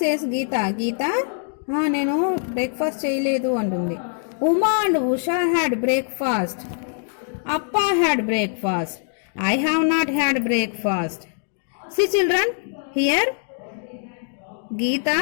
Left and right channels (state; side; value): silent; right; 63 dB below the other